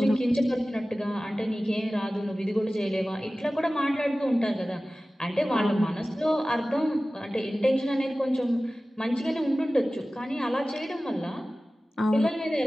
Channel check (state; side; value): normal; both; correlation 0.97